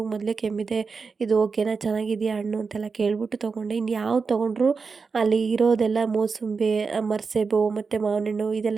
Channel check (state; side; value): quieter; left; 4.9 dB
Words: ಮೊದಲೇ ಕೆಮ್ಮಿದೆ, ಇದು ಓಕೆನಾ, ಚೆನ್ನಾಗಿದೆಯಾ ಹಣ್ಣು ಅಂತೆಲ್ಲ ಕೇಳಿಬಿಟ್ಟು ತೊಗೊಂಡೆ. ಇನ್ನು ಯಾವ್ದು ತೊಗೊಂಡ್ರು ಅಲ್ಲಿ ಇರೋದೆಲ್ಲ ಮೋಸಂಬಿ, ಮರ್ಸೇಬು ಮತ್ತು ಮಾವಿನ ಹಣ್ಣು